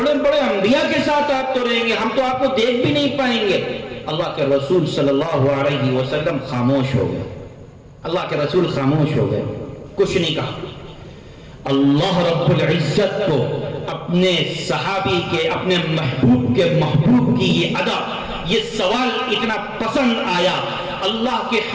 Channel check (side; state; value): both; identical; correlation 1.00